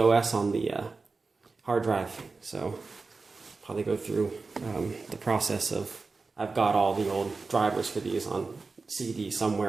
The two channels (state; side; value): quieter; left; 4.1 dB